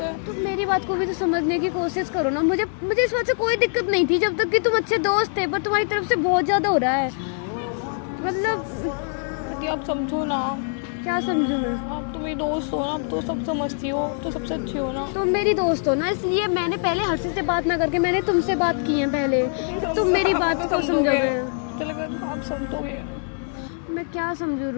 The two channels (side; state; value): right; silent; 62 dB below the other